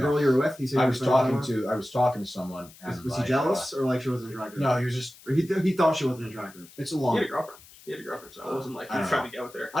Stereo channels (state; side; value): noise; left; hiss, 22 dB below the sound